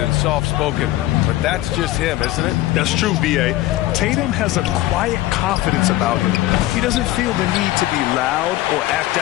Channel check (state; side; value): quieter; right; 16.1 dB